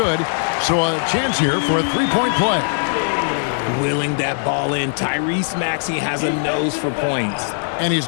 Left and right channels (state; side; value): silent; right; 60 dB below the other